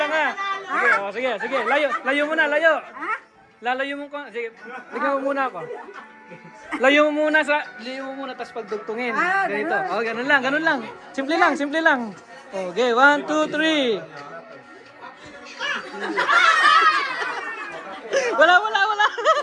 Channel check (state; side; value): identical; both; correlation 1.00